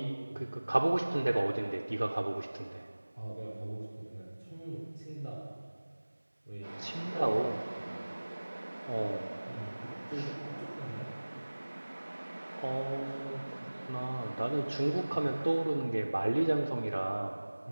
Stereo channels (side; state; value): both; inverted; correlation -1.00